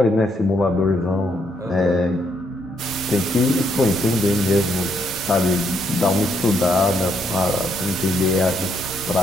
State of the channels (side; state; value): both; normal; correlation 0.75